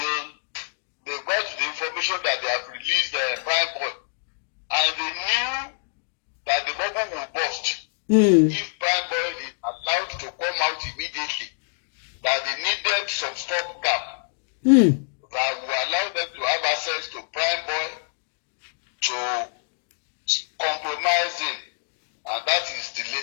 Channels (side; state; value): right; silent; digital silence